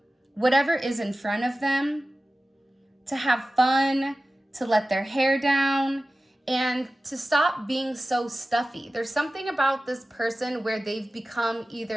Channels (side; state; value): both; normal; correlation 0.95